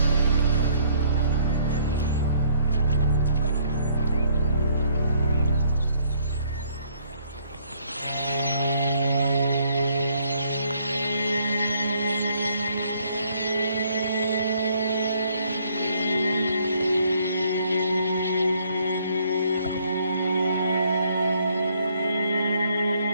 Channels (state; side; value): inverted; both; correlation -0.65